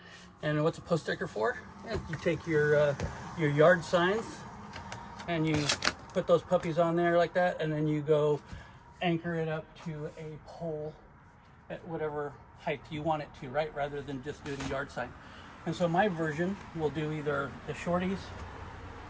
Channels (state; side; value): identical; both; correlation 1.00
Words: And what's a post sticker for? Yeah, you take your yard signs and you put those puppies on there like that, and then you go anchor it up to a pole at whatever height you want it to, right? Rather than just doing a yard sign. And so my version will do either the shorties